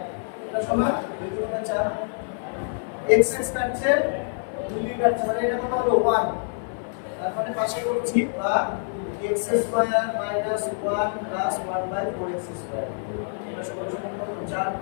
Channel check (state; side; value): silent; right; 61 dB below the other